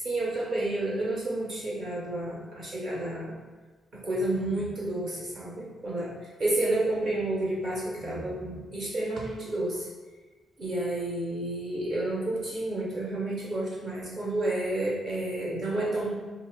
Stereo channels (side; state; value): both; normal; correlation 0.77